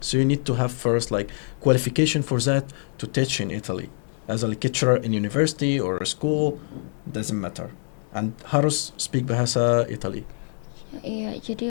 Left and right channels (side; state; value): right; silent; digital silence